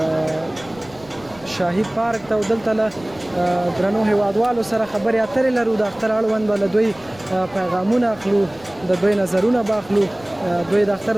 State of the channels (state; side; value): noise; left; rumble, 23 dB below the sound